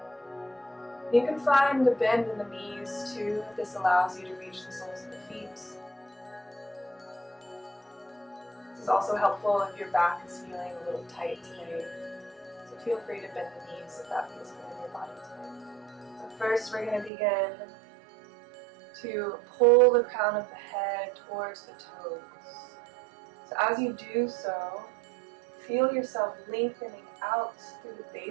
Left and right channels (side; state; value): left; drops out; at 17.1 s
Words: You can find a bend in the knees too, if this allows you to reach the soles of the feet. This is also helpful if your back is feeling a little tight today. So feel free to bend the knees if that feels good in your body today. So first we're going to begin to pull the crown of the head towards the toes. So as you do so, feel yourself lengthening out through the